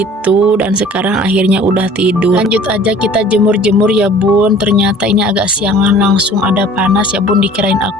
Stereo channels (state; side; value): normal; both; correlation 0.48